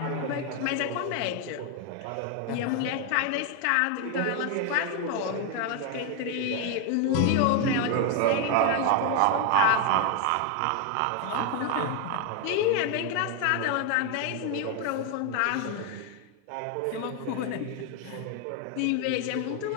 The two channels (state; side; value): different; both; correlation 0.01